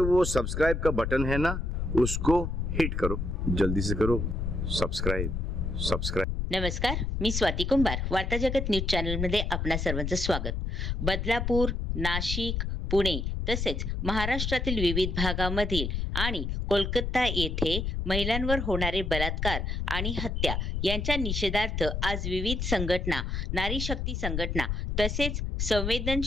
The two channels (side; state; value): left; noise; rumble, 1 dB below the sound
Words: वो सब्सक्राइब का बटन है ना, उसको हिट करो, जल्दी से करो सब्सक्राइब। नमस्कार, मी स्वाती कुंभार. वार्ता जगत न्यूज चॅनल मध्ये आपणा सर्वांचं स्वागत. बदलापूर, नाशिक, पुणे तसेच महाराष्ट्रातील विविध भागामधील आणि कोलकाता येथे महिलांवर होणारे बलात्कार आणि हत्या यांच्या निषेधार्थ आज विविध संघटना, नारी शक्ती संघटना तसेच